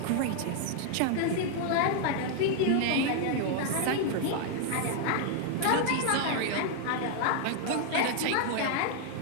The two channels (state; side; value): different; both; correlation 0.00